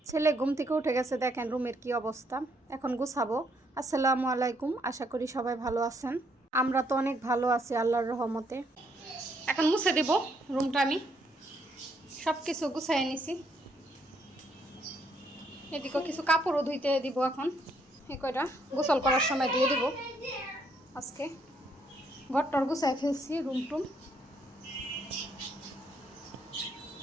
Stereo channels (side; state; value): both; normal; correlation 0.71